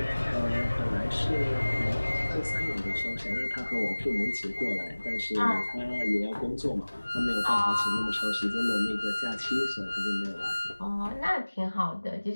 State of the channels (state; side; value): inverted; both; correlation -1.00